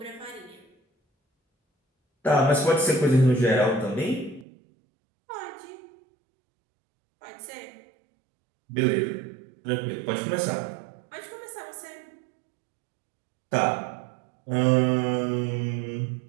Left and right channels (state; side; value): drops out; left; at 4.5 s